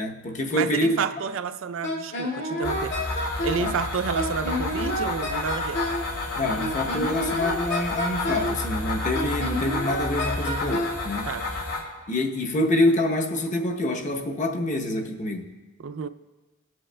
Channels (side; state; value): both; normal; correlation 0.34